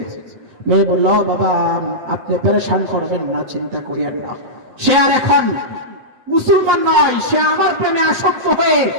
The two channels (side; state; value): left; late; 7.6 ms